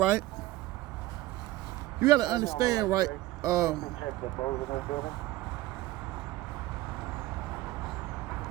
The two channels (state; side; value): quieter; left; 17.1 dB